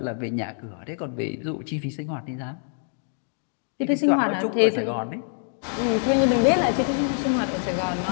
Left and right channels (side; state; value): right; silent; digital silence